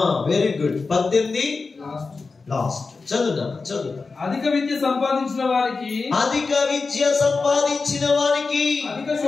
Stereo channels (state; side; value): quieter; right; 4.2 dB